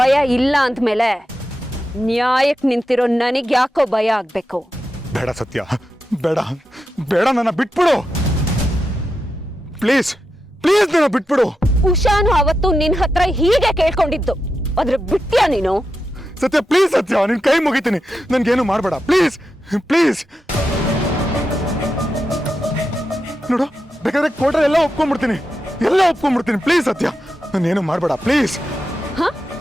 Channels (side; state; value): both; normal; correlation 0.88